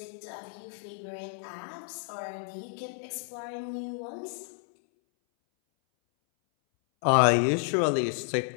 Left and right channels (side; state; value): right; silent; 58 dB below the other